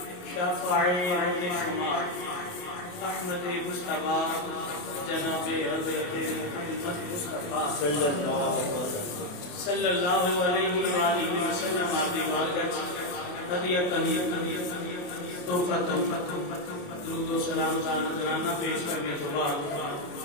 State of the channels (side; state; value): right; late; 28 ms